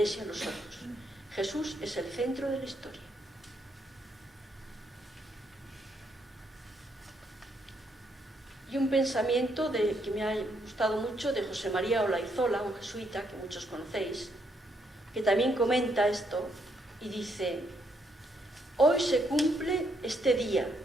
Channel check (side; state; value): both; normal; correlation 0.74